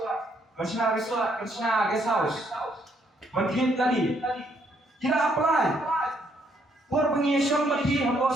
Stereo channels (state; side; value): normal; both; correlation 0.71